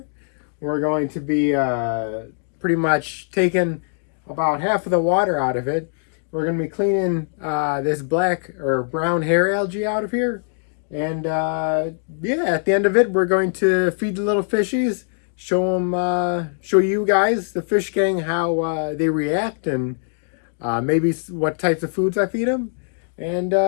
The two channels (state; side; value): silent; right; digital silence